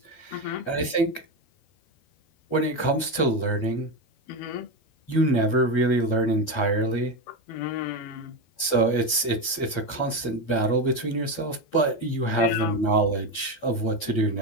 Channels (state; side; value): late; right; 12 ms